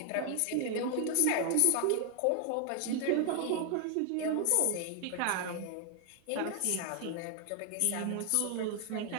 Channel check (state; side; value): different; both; correlation 0.00